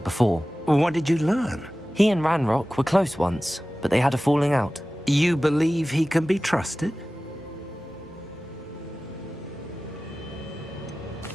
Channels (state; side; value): normal; both; correlation 0.96